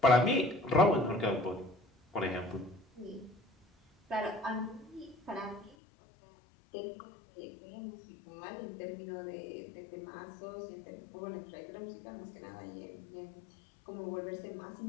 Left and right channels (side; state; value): right; drops out; at 5.8 s